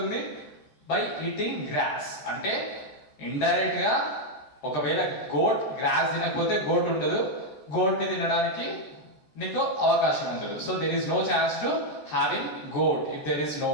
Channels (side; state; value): right; late; 13 ms